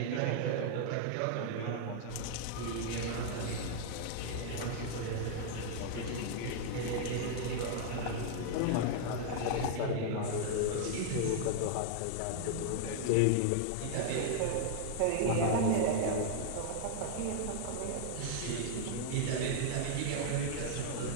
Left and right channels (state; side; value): different; both; correlation -0.01